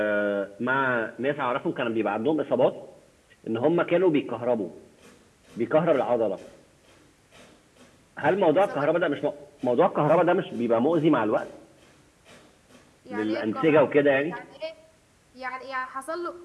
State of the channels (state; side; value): identical; both; correlation 1.00